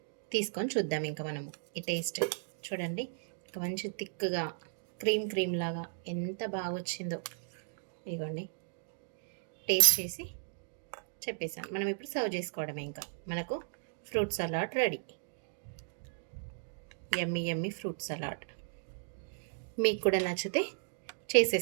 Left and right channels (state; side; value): silent; left; digital silence